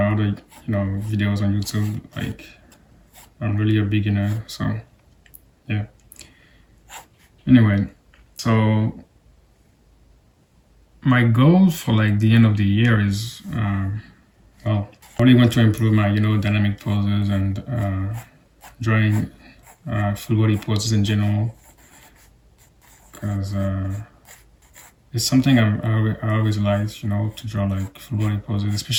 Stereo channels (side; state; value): both; identical; correlation 1.00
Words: videos on YouTube. Like I'm really a beginner, so yeah. Anyway, so my goal for like the end of the year is, well, I really want to improve my, dynamic poses and drawing full body poses in general, because it's something I always liked, to draw like full body poses,